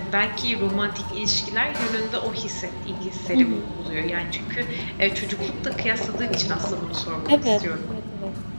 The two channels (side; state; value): both; inverted; correlation -1.00